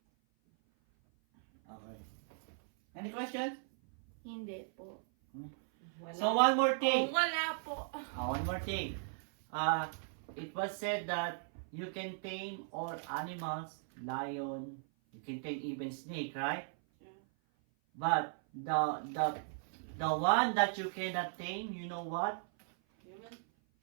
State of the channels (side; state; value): left; silent; 53 dB below the other